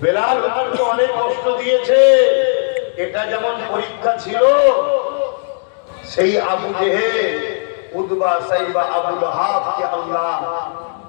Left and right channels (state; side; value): silent; right; digital silence